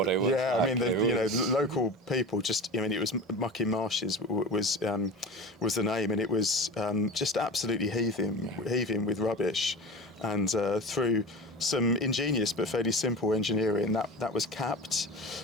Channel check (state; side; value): normal; both; correlation 0.32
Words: it was. Yeah, I mean, the local people it was Mucking Marshes was the name, and it was just absolutely heaving with rubbish, and through some ingenious but fairly simple engineering, that was capped